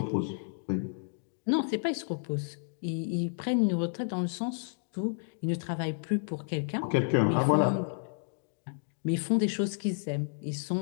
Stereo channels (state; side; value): silent; right; digital silence